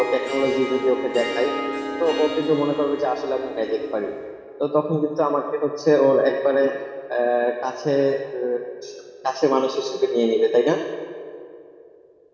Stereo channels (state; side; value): identical; both; correlation 1.00